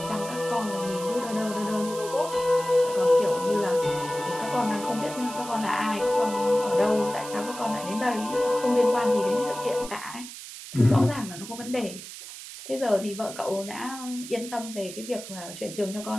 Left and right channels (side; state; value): right; noise; hiss, 12 dB below the sound